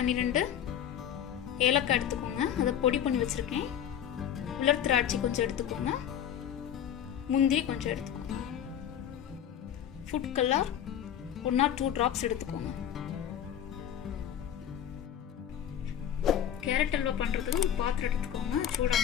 ஏலக்காய் எடுத்துக்கோங்க. அதை பொடி பண்ணி வச்சுருக்கேன். உலர் திராட்சை கொஞ்சம் எடுத்துக்கோங்க. முந்திரி கொஞ்சம் எடுத்துக்கோங்க. ஃபுட் கலர் 1 or 2 drops எடுத்துக்கோங்க. கேரட் அல்வா பண்ணுறதுக்கு ஒரு பாத்திரம் எடுத்துக்கோங்க.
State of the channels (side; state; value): right; quieter; 9.7 dB